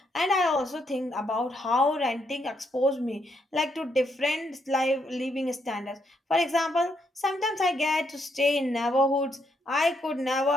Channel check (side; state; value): both; normal; correlation 0.76